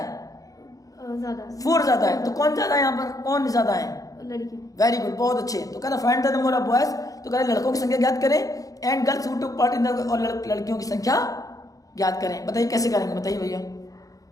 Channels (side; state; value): right; late; 0.17 ms